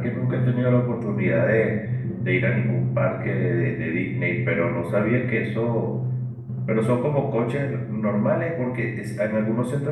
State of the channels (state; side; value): identical; both; correlation 1.00